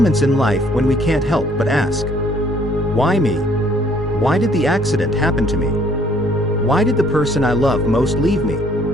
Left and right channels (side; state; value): both; normal; correlation 0.62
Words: in life when we can't help but ask, why me? Why did the accident happen to me? Why did the person I love most leave me?